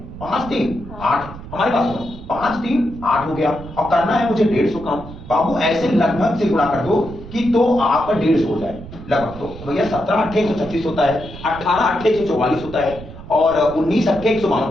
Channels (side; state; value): right; noise; rumble, 14 dB below the sound